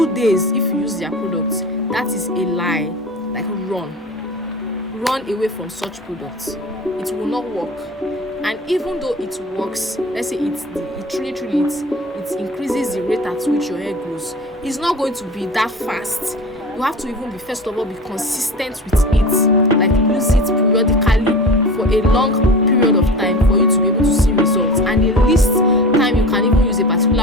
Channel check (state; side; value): normal; both; correlation 0.33